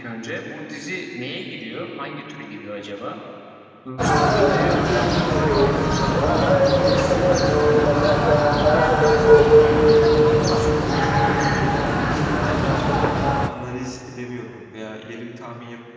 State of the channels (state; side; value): identical; both; correlation 1.00